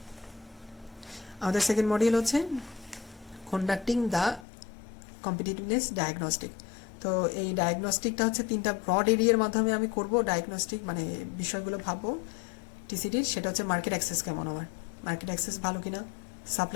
আমাদের সেকেন্ড মডিউল হচ্ছে কন্ডাক্টিং দ্য কম্পিটিটিভনেস ডায়াগনস্টিক। তো এই ডায়াগনস্টিকটা হচ্ছে 3টা ব্রড এরিয়ার মাধ্যমে আমি করব ডায়াগনস্টিক, মানে বিষয়গুলো ভাববো টিসিডির। সেটা হচ্ছে মার্কেট অ্যাক্সেস কেমন, আমার মার্কেট অ্যাক্সেস ভালো কিনা,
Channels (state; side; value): drops out; right; at 4.5 s